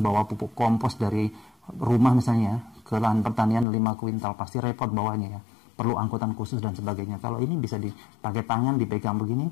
pupuk kompos dari rumah misalnya ke lahan pertanian 5 kuintal, pasti repot bawahnya ya. Perlu angkutan khusus dan sebagainya. Kalau ini bisa dipakai tangan, dipegang begini,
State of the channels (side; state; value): right; drops out; at 3.7 s